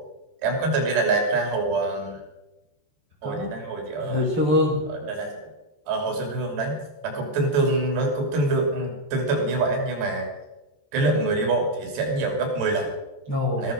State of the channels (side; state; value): left; late; 14 ms